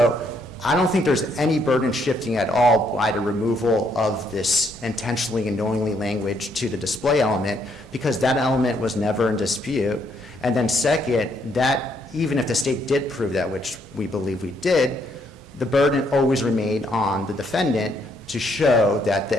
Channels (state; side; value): normal; both; correlation 0.71